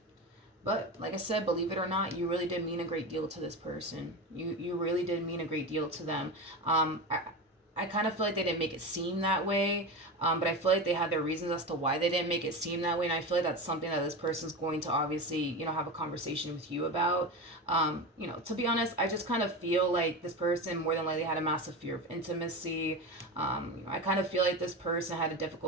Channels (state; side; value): normal; both; correlation 0.23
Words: But like I said, believe it or not, you really did mean a great deal to this person. You really did mean a great deal to them. I kind of feel like they didn't make it seem that way, but I feel like they had their reasons as to why they didn't make it seem that way, and I feel like that's something that this person's going to obviously, have a conversation with you about. To be honest, I just kind of feel like this person more than likely had a massive fear of intimacy. I kind of feel like this person had a